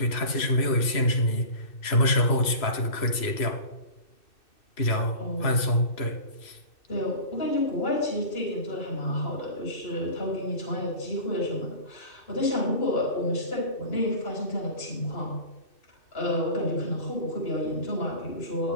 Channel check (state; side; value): late; right; 2.6 ms